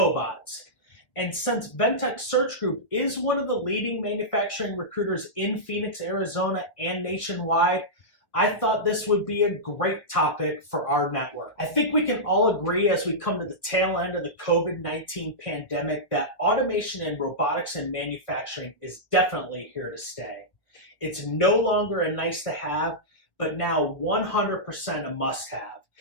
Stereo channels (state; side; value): late; right; 1.6 ms